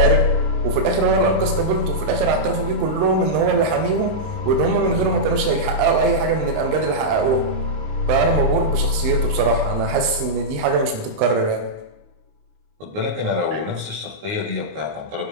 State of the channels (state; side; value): late; left; 20 ms